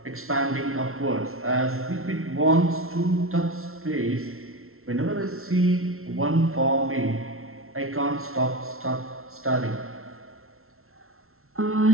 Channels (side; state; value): left; late; 0.62 ms